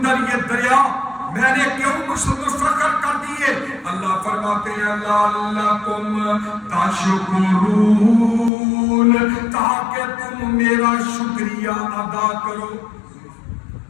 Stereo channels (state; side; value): drops out; right; at 8.5 s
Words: یہ دریا میں نے کیوں مسخر کر دیے. اللہ فرماتے ہیں لعلکم تشکرون, تاکہ تم میرا شکریہ ادا کرو.